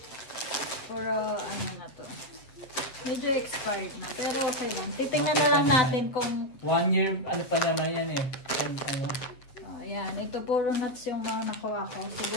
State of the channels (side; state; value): right; late; 8.0 ms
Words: puro ano na to. Medyo expired na, pero okay lang. Titingnan na lang natin kung 1 year, ano pa naman yan eh. Ano? ayan, ito puro nuts yung mga nakuha ko.